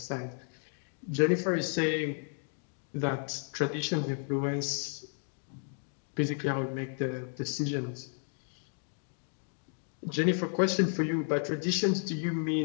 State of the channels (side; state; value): right; silent; 56 dB below the other